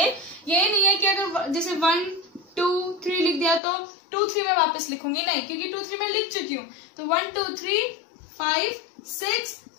ये नहीं है कि अगर जैसे 1 2 3 लिख दिया तो 2 3 में वापस लिखूंगी, नहीं, क्योंकि 2 3 में लिख चुकी हूँ। तो 1 2 3 5 6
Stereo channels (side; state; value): right; drops out; at 3.6 s